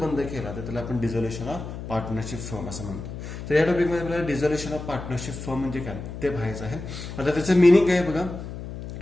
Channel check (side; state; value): left; noise; hum, 9 dB below the sound